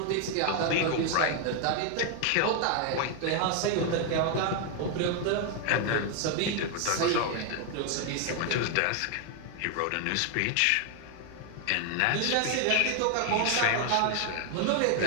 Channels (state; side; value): different; both; correlation 0.01